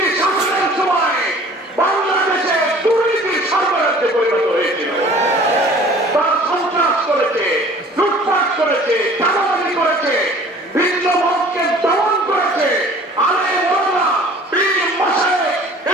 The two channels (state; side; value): normal; both; correlation 0.49